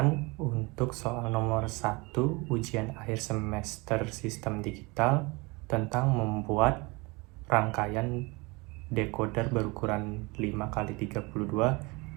untuk soal nomor 1 ujian akhir semester sistem digital tentang membuat rangkaian decoder berukuran 5x32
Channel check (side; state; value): left; quieter; 26.2 dB